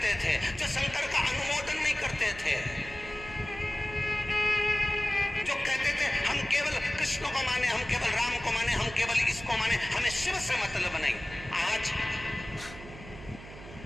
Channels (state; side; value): noise; right; hum, 15 dB below the sound